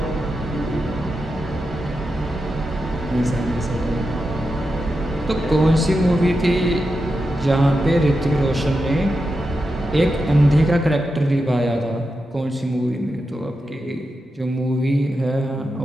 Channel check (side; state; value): both; normal; correlation 0.89